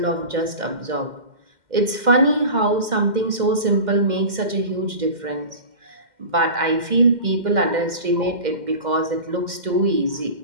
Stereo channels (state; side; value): late; left; 2.1 ms